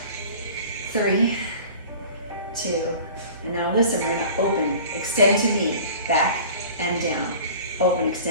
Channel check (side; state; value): both; inverted; correlation -0.43